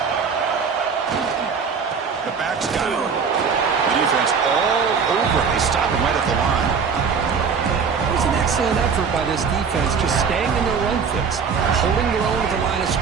The back's got it. Defense all over. They stop him right at the line. It was an excellent effort by this defense, just staying in their run fix, holding their own at the line of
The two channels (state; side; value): quieter; left; 5.9 dB